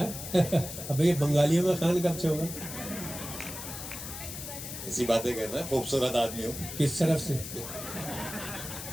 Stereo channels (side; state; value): left; noise; hiss, 9 dB below the sound